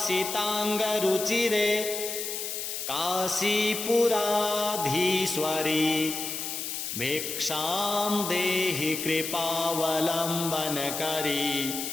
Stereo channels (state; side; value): noise; left; hiss, 4 dB below the sound